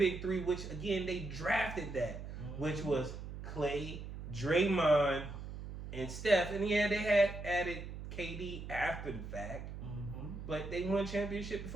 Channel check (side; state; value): right; noise; hum, 9 dB below the sound